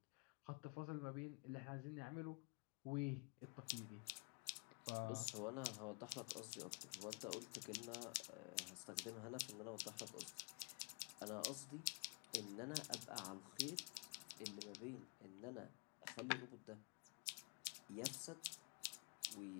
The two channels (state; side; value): quieter; right; 33.7 dB